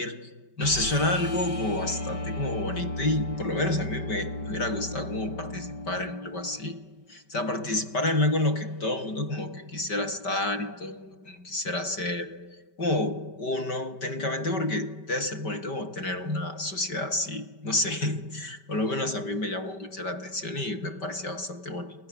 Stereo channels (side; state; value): right; late; 5.2 ms